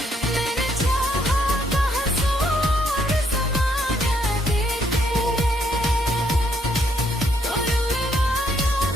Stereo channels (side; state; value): both; normal; correlation 0.72